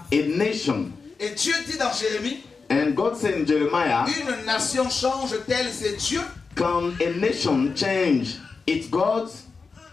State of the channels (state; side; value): quieter; right; 4.7 dB